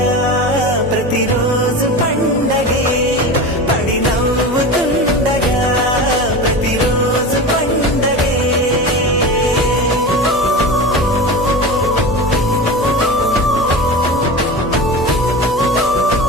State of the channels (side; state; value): both; normal; correlation 0.28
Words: ప్రతిరోజు పండగే పడి నవ్వుతుండగా ప్రతిరోజు పండగే